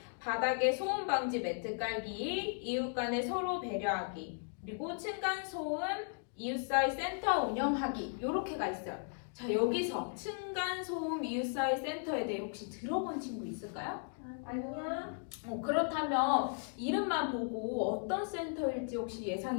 바닥에 소음 방지 매트 깔기, 이웃 간에 서로 배려하기, 그리고 층간 소음 이웃 사이 센터 운영하기 이렇게가 있어요. 자, 여기서 층간 소음 이웃 사이 센터에 대해 혹시 들어본 친구 있을까요? 아니야. 그렇다면 이름만 보고 어떤 센터일지 혹시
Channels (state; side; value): silent; right; 54 dB below the other